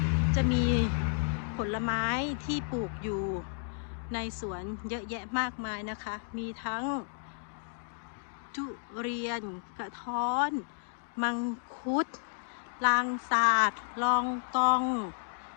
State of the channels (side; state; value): right; silent; digital silence